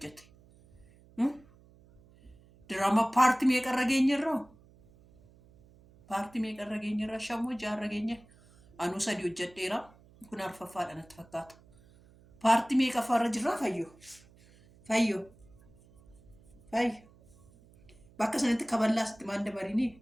diraama paartii meeqarra geenyerraa shammoo jaarra geenya anuu 3 hojjedheera kun arfaffaadha natti fakkaata paartii meeqaffaarra jirraa fayyoo bakka sanitti kaballaa sitti maan dabarinii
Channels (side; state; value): right; noise; hum, 27 dB below the sound